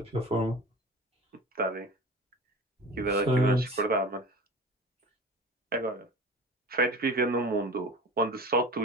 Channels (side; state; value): both; normal; correlation 0.37